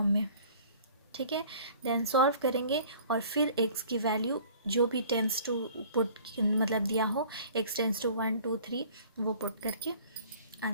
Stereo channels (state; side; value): inverted; both; correlation -0.50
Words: में, ठीक है। देन सॉल्व करेंगे और फिर x की वैल्यू जो भी टेंस टू पुट मतलब दिया हो, x टेंस टू 1 2 3 वो पुट करके